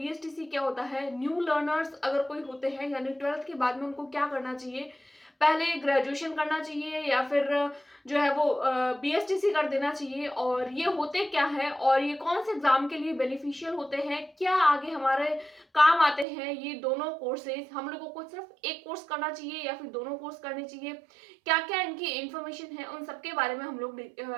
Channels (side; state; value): left; drops out; at 16.2 s